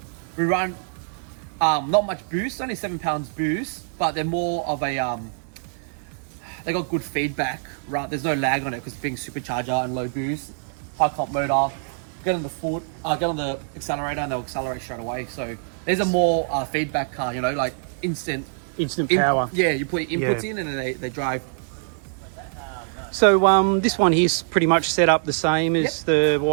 not much boost, only 7 pounds boost, but they're more of a they got good feedback, right? There's no lag on it because being supercharger and low boost, high comp motor. Get on the foot, get on the accelerator, and they'll accelerate straight away. So there's a more feedback car, like instant power. Yeah, you put your inputs in and then they drive. So this one here's pretty much set up the same as the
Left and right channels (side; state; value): left; silent; digital silence